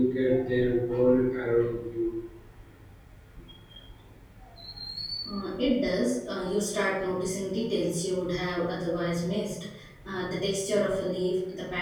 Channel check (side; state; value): both; identical; correlation 1.00